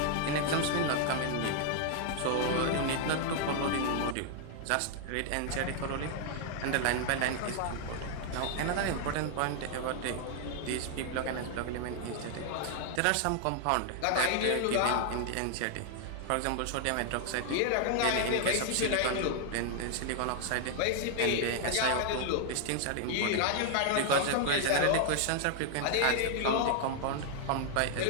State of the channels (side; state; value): both; different; correlation 0.00